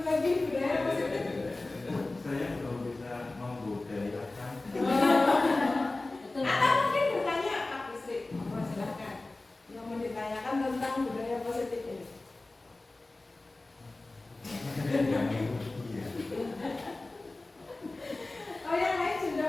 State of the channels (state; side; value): quieter; right; 3.1 dB